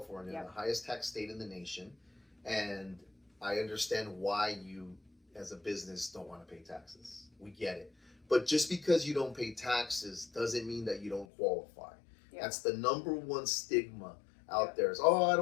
the highest tax state in the nation, and I understand why you, as a business, don't want to pay taxes. We get it. But just because you don't pay taxes doesn't mean that you don't qualify. That's the number one stigma out there. Is, I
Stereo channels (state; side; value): drops out; right; at 11.2 s